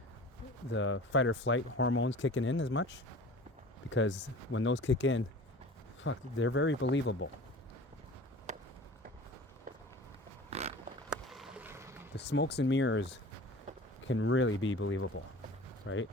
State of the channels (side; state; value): both; normal; correlation 0.40